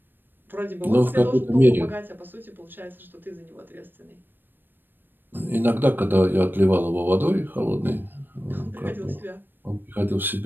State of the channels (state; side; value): late; left; 0.094 ms